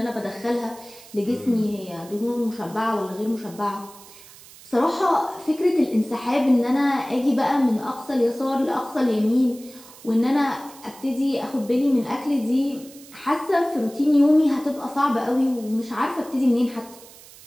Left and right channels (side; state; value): right; noise; hiss, 21 dB below the sound